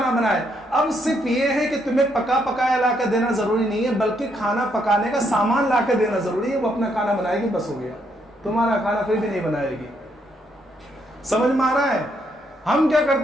بنائے. اب صرف یہ ہے کہ تمہیں پکایا لا کر دینا ضروری نہیں ہے، بلکہ کھانا پکانے کا سامان لا کر دینا ضروری ہے. وہ اپنا کھانا بنائے گی، بس ہو گیا. تمہارا کھانا پھر بھی نہیں بنائے گی. سمجھ میں آ رہا ہے؟ ہم کیا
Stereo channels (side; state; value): both; normal; correlation 0.74